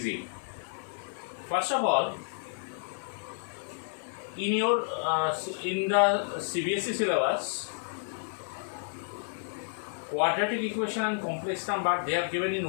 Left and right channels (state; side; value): silent; right; 57 dB below the other